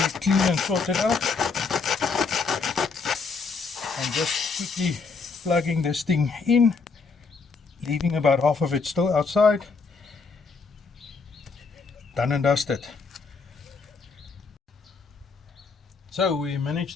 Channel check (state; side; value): quieter; right; 4.7 dB